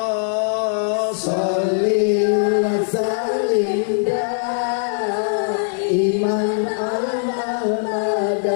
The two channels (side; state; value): right; silent; digital silence